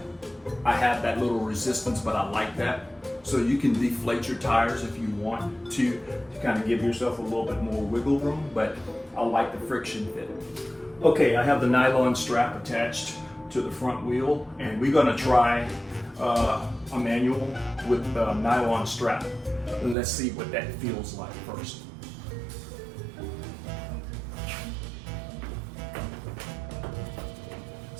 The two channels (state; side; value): drops out; left; at 20.0 s